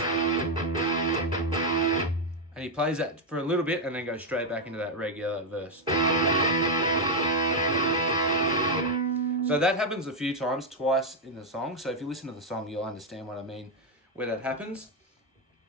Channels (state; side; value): normal; both; correlation 0.03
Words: and he plays that for a little bit and then goes straight back into that regular verse. So that happens a few times, twice in the song. So if you listen to the song, you'll understand what I mean where that happens.